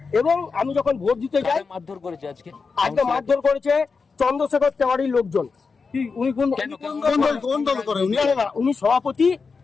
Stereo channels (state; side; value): quieter; right; 4.8 dB